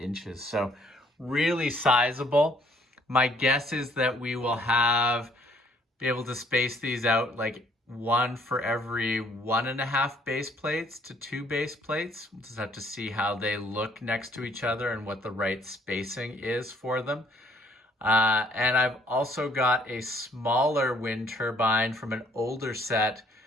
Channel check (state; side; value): normal; both; correlation 0.62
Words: So really sizable. My guess is that we will be able to space these out like one for every 1.5 base plates to 2 base plates. We'll just have to see how they look next to each other and what the right spacing is for them. And I've also got a smaller wind turbine from an older set